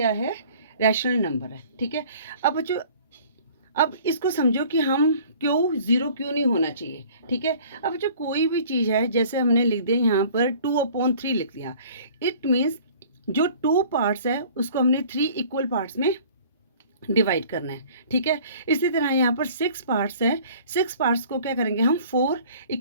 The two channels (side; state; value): both; inverted; correlation -0.50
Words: है, रैशनल नंबर है, ठीक है। अब बच्चों अब इसको समझो कि हम क्यों ज़ीरो क्यों नहीं होना चाहिए, ठीक है। अब जो कोई भी चीज़ है, जैसे हमने लिख दिया यहाँ पर 2/3 लिख दिया, इट मीन्स जो 2 पार्ट्स है उसको हमने 3 इक्वल पार्ट्स में डिवाइड करना है, ठीक है। इसी तरह यहाँ पर 6 पार्ट्स है, 6 पार्ट्स को क्या करेंगे हम 4